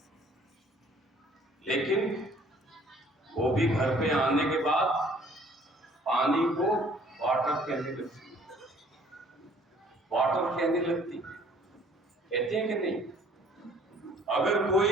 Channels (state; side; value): normal; both; correlation 0.57